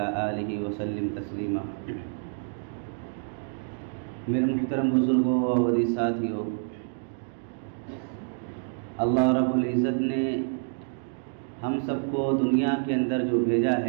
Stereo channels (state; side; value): silent; left; digital silence